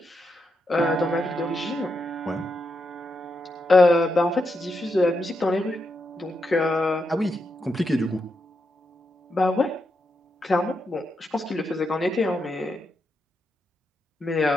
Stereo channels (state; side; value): normal; both; correlation 0.84